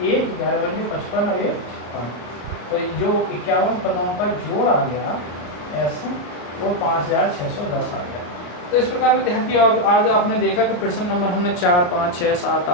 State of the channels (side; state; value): right; late; 34 ms